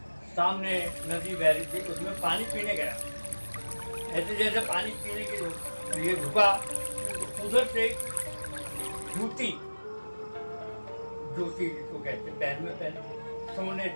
सामने नदी बह रही थी, उसमें पानी पीने गया। ऐसे जैसे पानी पीने के लिए झुका, उधर से जूती जिसको कहते पैर में पहने सोने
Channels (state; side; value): inverted; both; correlation -1.00